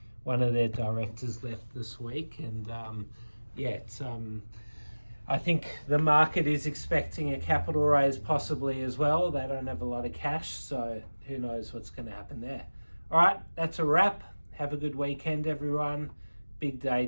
One of their directors left this week, and I think the market is expecting a capital raise possibly as well. They don't have a lot of cash, so who knows what's going to happen there. All right, that's a wrap. Have a good weekend, everyone. Big day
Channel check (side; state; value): both; inverted; correlation -1.00